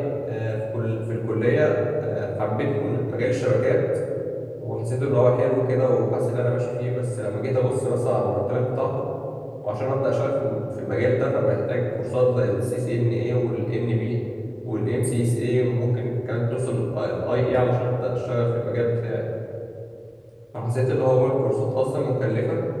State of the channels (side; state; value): both; identical; correlation 1.00